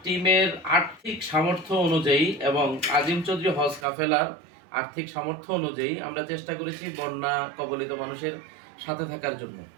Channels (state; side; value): drops out; left; at 3.9 s